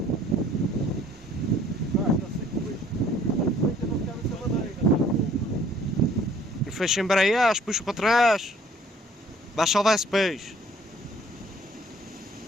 E fecha embreagem, puxa para trás. Vai salvar esse peixe.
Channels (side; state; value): both; normal; correlation 0.57